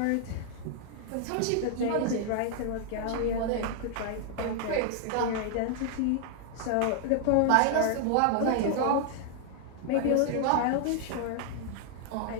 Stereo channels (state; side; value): different; both; correlation 0.00